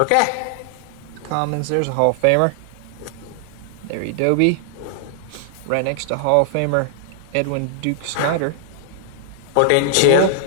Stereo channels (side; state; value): both; different; correlation 0.00